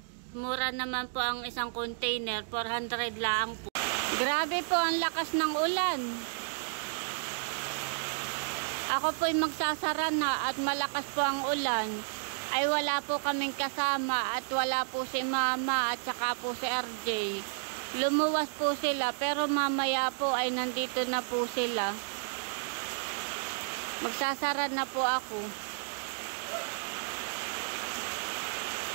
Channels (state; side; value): silent; left; digital silence